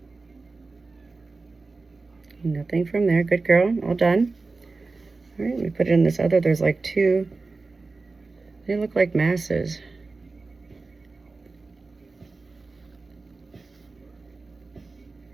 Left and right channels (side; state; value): left; quieter; 3.8 dB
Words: Nothing from there. Good girl. All done. All right, we put it in this other. There's like 2. They look like masses.